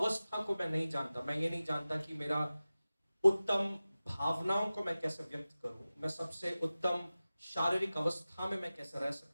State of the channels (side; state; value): both; inverted; correlation -0.96